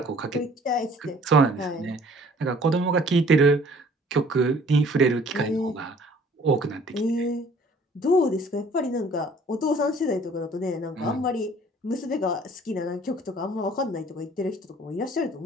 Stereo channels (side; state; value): both; normal; correlation 0.54